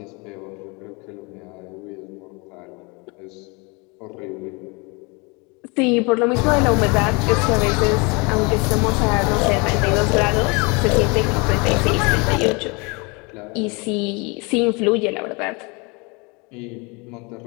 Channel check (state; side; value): quieter; right; 29.0 dB